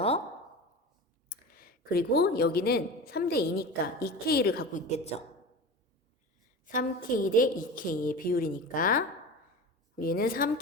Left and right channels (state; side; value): normal; both; correlation 0.31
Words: 그리고 여기는 3대 2니까 2K를 갖고 있겠죠. 3K 대 2K의 비율이니까 얘는